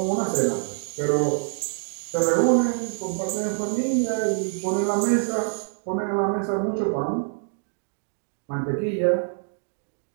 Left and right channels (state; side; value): silent; left; 61 dB below the other